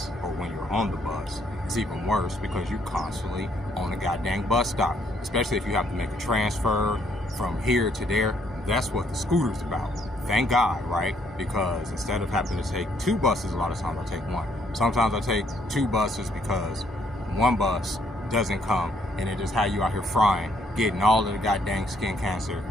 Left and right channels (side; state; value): both; normal; correlation 0.69